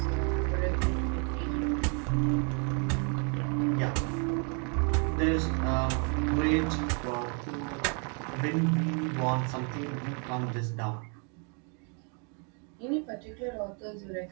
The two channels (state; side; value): quieter; left; 38.9 dB